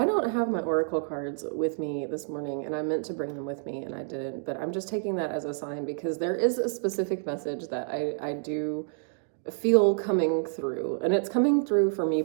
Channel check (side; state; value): left; silent; digital silence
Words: don't have my oracle cards with me this morning, and I meant to bring them with me and I didn't, but I'm just taking that as a sign because there is a specific message that I do feel coming through, and it's coming through for me